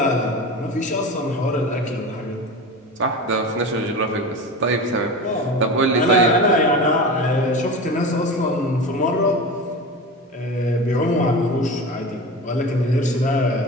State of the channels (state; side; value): normal; both; correlation 0.29